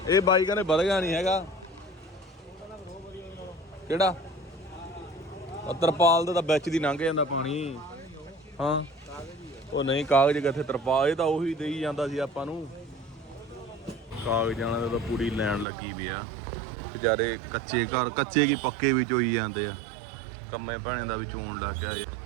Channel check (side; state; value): left; drops out; at 15.7 s